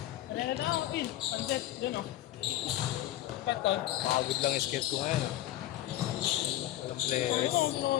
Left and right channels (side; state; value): right; quieter; 14.1 dB